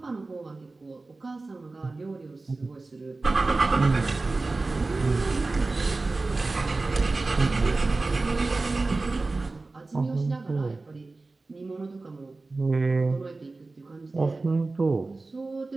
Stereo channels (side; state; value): left; quieter; 3.5 dB